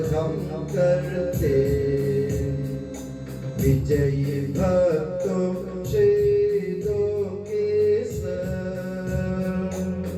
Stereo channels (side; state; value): both; identical; correlation 1.00